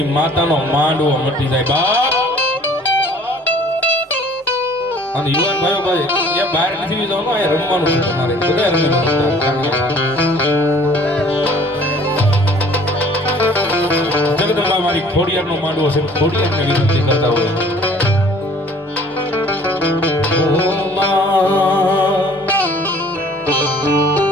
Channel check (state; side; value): normal; both; correlation 0.53